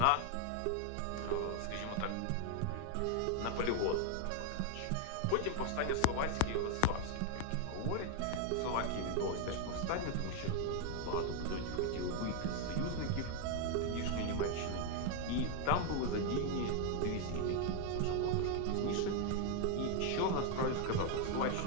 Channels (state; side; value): different; both; correlation 0.00